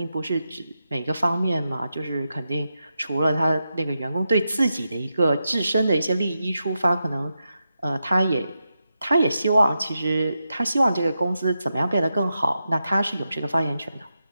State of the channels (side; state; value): both; inverted; correlation -0.88